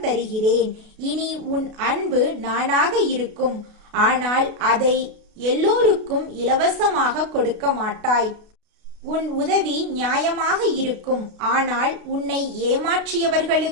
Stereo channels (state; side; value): late; left; 32 ms